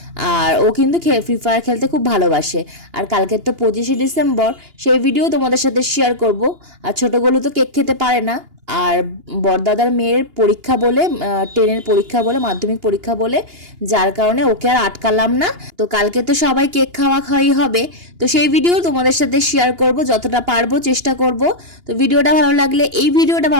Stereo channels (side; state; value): left; late; 2.8 ms